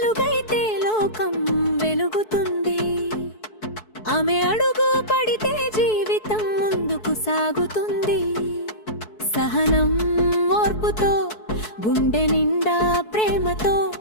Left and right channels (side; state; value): right; late; 4.6 ms